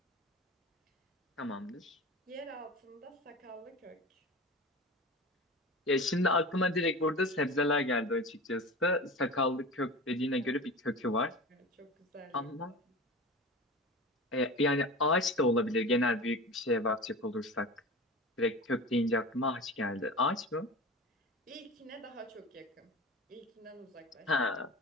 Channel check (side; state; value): both; normal; correlation 0.32